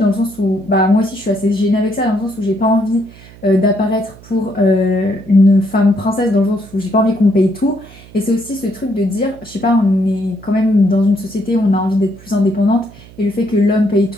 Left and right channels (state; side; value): noise; right; hum, 21 dB below the sound